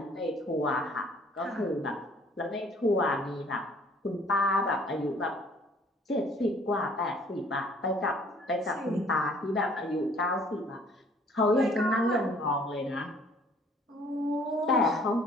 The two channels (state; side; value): normal; both; correlation 0.57